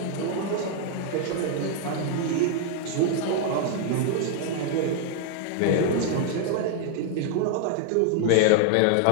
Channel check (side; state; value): both; different; correlation 0.00